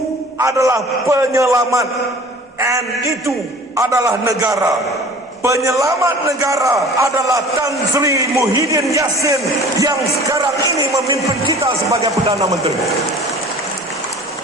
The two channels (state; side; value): normal; both; correlation 0.45